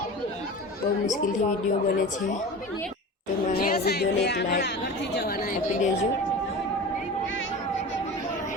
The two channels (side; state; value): both; normal; correlation 0.33